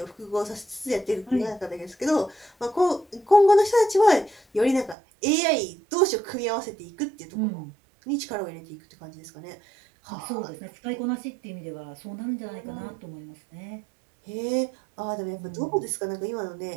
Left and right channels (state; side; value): drops out; left; at 5.0 s